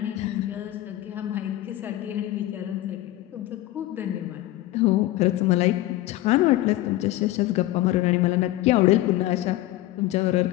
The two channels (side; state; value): right; quieter; 16.0 dB